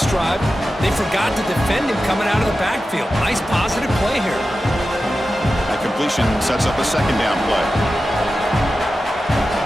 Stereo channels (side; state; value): both; normal; correlation 0.93